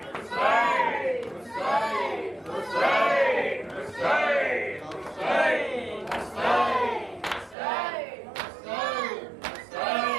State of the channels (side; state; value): left; drops out; at 7.6 s